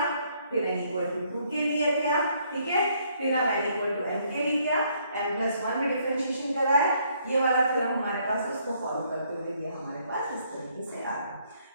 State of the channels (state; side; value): inverted; both; correlation -0.68